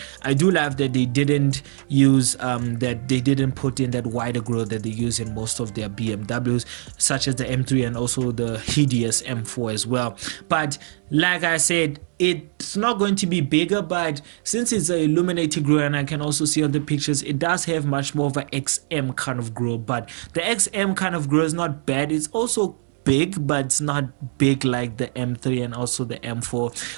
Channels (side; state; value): left; silent; digital silence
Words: I do love that they didn't use that they didn't put in that wider grille that they use in most of their BMWs, such as the M3 and also the hideous M4 as well. But like I said, it's not going to be bigger, but since it's an illuminated grille, and I can also see on the pictures, it does have much more of an XM kind of grille. But the XM kind of grille is not bad. It's also big, but it's not big like the M3 and also the M4.